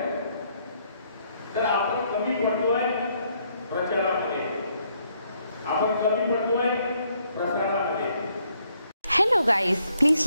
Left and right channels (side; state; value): both; inverted; correlation -0.71